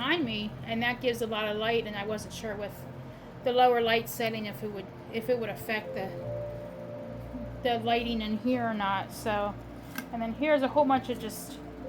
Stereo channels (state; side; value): identical; both; correlation 1.00